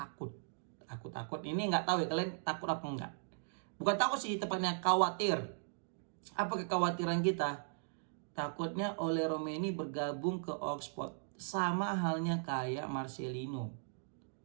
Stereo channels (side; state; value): left; silent; digital silence